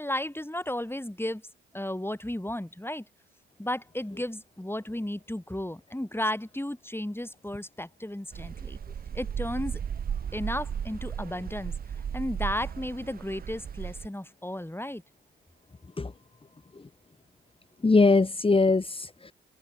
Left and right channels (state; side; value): normal; both; correlation 0.78